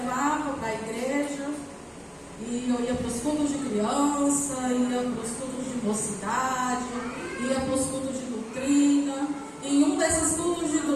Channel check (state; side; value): identical; both; correlation 1.00